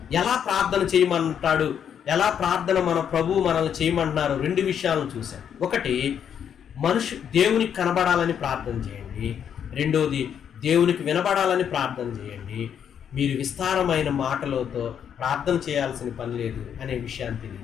ఎలా ప్రార్థన చేయమంటాడు, ఎలా ప్రార్థన మన ప్రభు మనల్ని చేయమంటున్నారు 2 విషయాలను చూశాం. ఒకటి, దేవునికి కనబడాలని ప్రార్థన చేయండి. రెండోది, దేవునికి వినబడాలని ప్రార్థన చేయండి. మీరు విస్తారమైన మాటలతో ప్రార్థన చేయాల్సిన పని లేదు అనే విషయాన్ని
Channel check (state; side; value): quieter; right; 8.4 dB